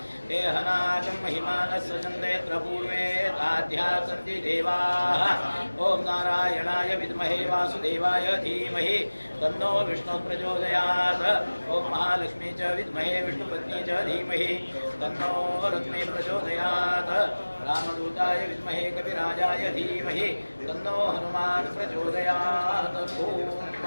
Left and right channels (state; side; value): inverted; both; correlation -1.00